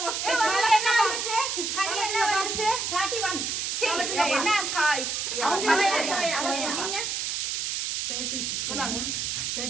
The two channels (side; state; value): right; noise; hiss, 1 dB below the sound